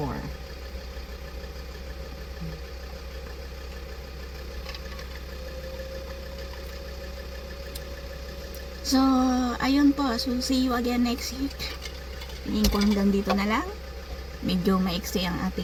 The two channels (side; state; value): both; identical; correlation 1.00